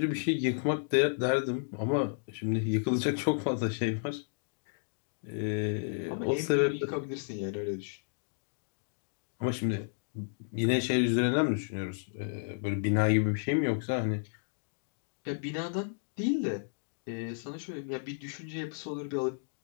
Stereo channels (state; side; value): silent; right; digital silence